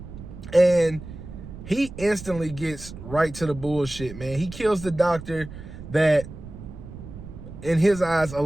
and he instantly gets right to the bullshit, man. He kills the doctor that, in his eyes,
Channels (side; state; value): right; noise; rumble, 13 dB below the sound